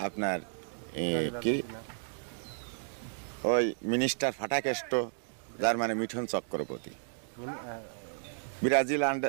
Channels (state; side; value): silent; left; digital silence